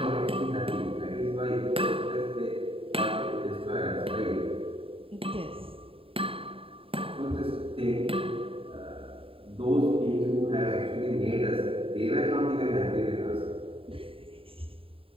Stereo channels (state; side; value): late; left; 0.27 ms